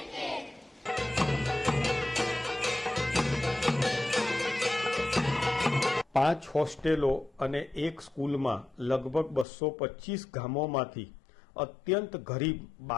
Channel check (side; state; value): right; drops out; at 9.5 s